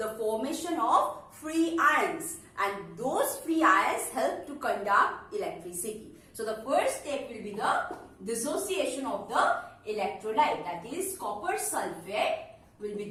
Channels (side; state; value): both; identical; correlation 1.00